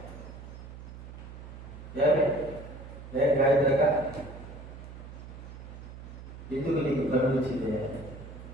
గాయత్రక ఎందుకు నీకు కన్ను వచ్చింది?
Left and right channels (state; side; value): noise; right; hum, 13 dB below the sound